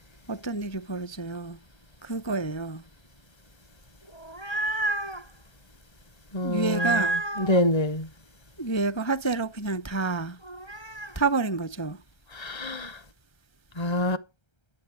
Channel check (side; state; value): right; late; 1.3 ms